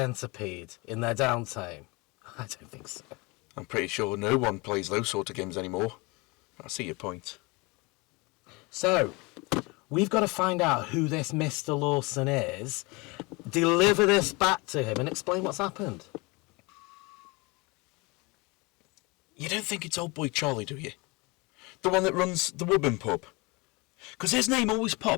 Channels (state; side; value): quieter; right; 26.3 dB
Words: in their downtime? I don't think so. I'm pretty sure no one plays those sort of games anymore. I see your point. So, we've got to find out who this Mr. Lawson is, deliver this back to him and explain what's happened. You don't think it's old boy Charlie, do you? The one that runs the Woburn pub? Because his name always